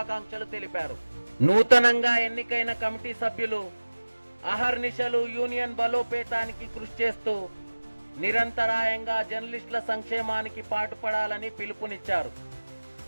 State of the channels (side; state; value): both; inverted; correlation -1.00